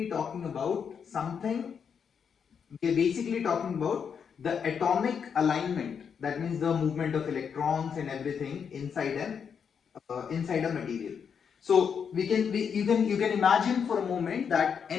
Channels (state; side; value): quieter; right; 6.9 dB